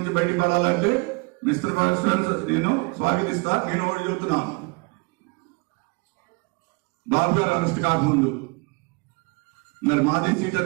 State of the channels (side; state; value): left; quieter; 29.4 dB